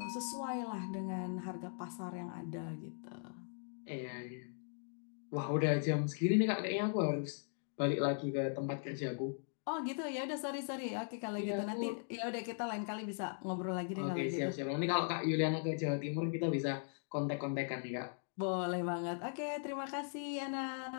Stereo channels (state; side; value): silent; right; digital silence